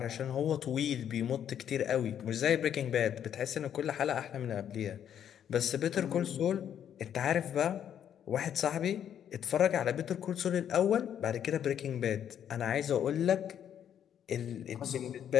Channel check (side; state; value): right; quieter; 9.4 dB